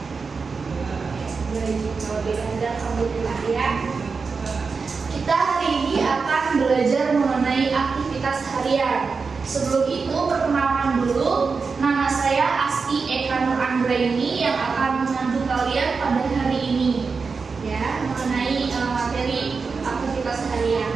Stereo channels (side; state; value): left; quieter; 4.9 dB